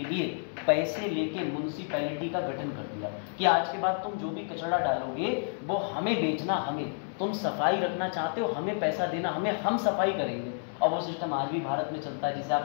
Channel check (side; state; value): right; silent; digital silence